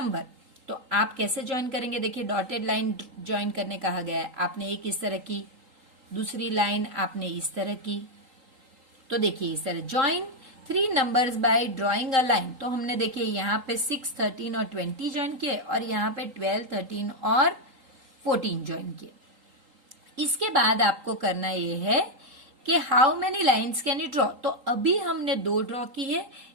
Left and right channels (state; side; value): late; left; 3.8 ms